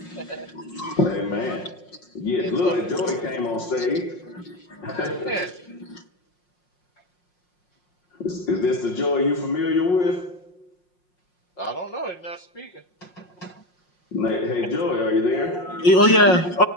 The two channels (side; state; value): right; late; 5.6 ms